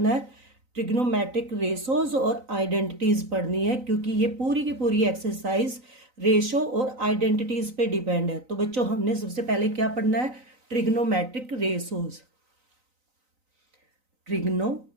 है, ट्रिग्नोमेट्रिक रेशोज और आइडेंटिटीज पढ़नी है, क्योंकि ये पूरी की पूरी एक्सरसाइज रेशो और आइडेंटिटीज पे डिपेंड है। तो बच्चों, हमने सबसे पहले क्या पढ़ना है, ट्रिग्नोमेट्रिक रेशोज। Trigonometric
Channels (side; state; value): left; late; 3.9 ms